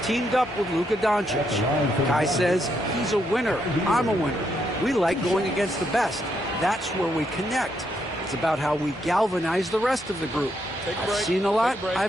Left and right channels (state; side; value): normal; both; correlation 0.77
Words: up with Luka Doncic. Kai says he's a winner. I'm a winner. We like going against the best. That's where we connect. It's about how we galvanize the rest of the group. I've seen a lot.